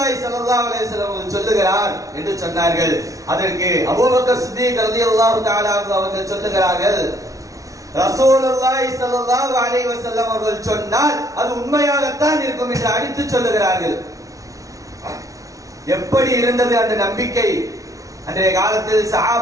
ஸல்லல்லாஹு அலைஹி வஸல்லம் அவர்கள் சொல்லுகிறார் என்று சொன்னார்கள். அதற்கு அபூபக்கர் சித்தீக் ரலியல்லாஹு தஆலா அவர்கள் சொல்லுகிறார்கள், ரசூலுல்லாஹி ஸல்லல்லாஹு அலைஹி வஸல்லம் அவர்கள் சொன்னால் அது உண்மையாகத்தான் இருக்கும் என்று அடித்து சொல்லுகிறார்கள். எப்படி இருந்தது அந்த நம்பிக்கை? அன்றைய காலத்தில்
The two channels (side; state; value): left; late; 0.17 ms